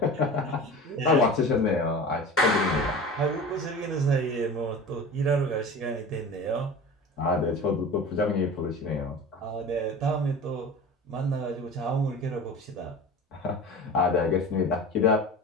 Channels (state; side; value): normal; both; correlation 0.35